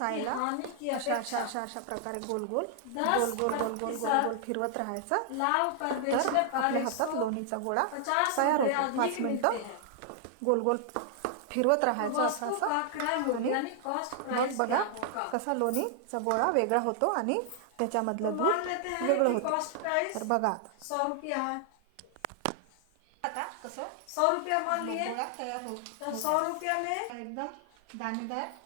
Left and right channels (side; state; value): both; different; correlation 0.00